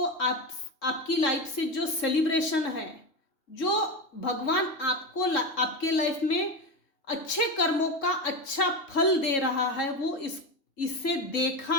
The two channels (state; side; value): late; right; 3.6 ms